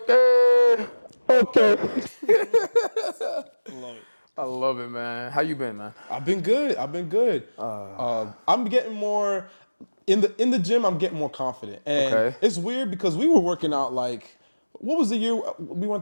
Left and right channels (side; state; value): both; inverted; correlation -1.00